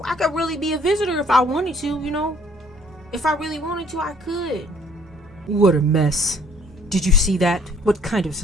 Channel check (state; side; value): normal; both; correlation 0.59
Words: really be a visitor if I wanted to, If I really wanted to, I could. What a mess. Did you see that? What kind of